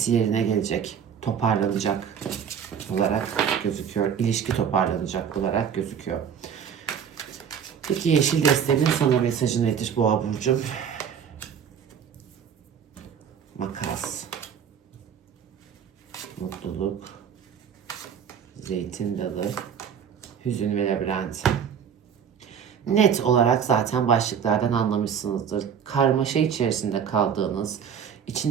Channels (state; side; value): quieter; left; 7.7 dB